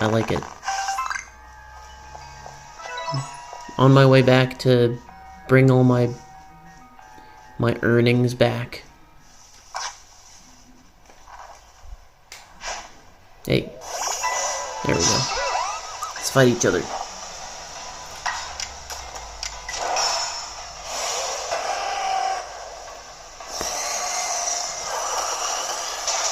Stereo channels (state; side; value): identical; both; correlation 1.00